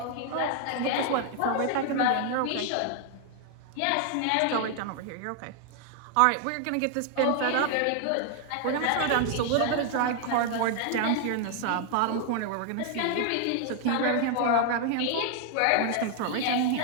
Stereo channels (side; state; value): both; different; correlation 0.00